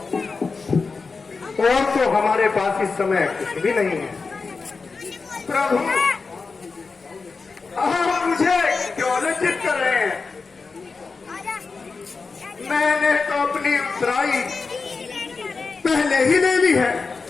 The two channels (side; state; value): right; quieter; 4.5 dB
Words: और तो हमारे पास इस समय कुछ भी नहीं है। प्रभु, आप मुझे क्यों लज्जित कर रहे हैं? मैंने तो अपनी उत्तराई पहले ही ले ली है।